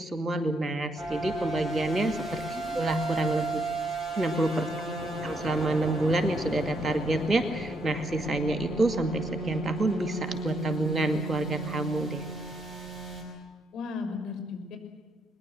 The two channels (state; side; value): normal; both; correlation 0.75